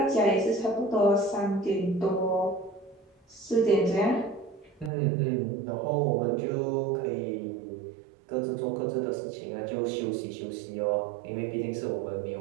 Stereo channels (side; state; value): left; drops out; at 4.9 s